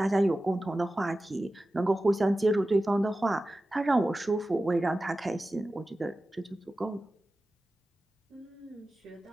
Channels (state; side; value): normal; both; correlation 0.95